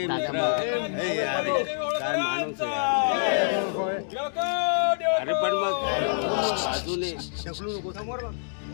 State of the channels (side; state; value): right; silent; digital silence